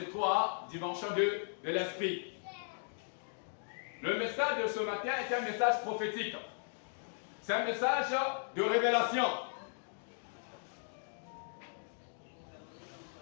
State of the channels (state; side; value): silent; right; digital silence